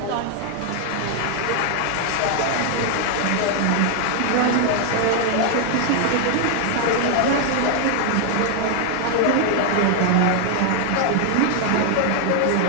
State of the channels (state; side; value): different; both; correlation 0.00